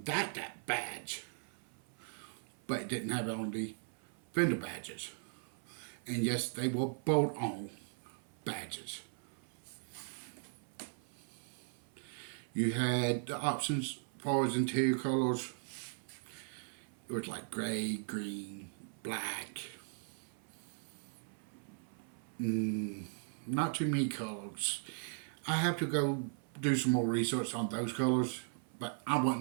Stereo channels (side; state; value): left; silent; 52 dB below the other